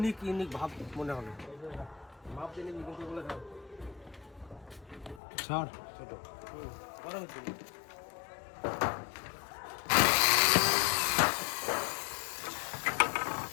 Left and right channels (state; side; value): drops out; right; at 5.2 s